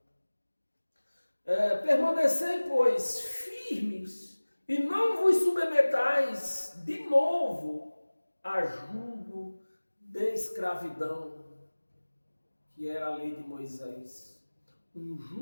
Permanecei, pois, firmes e não vos submetais de novo a jugo de escravidão, que era a lei de Moisés. Um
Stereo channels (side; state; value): both; inverted; correlation -1.00